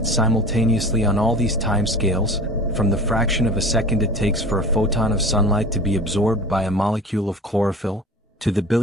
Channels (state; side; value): normal; both; correlation 0.37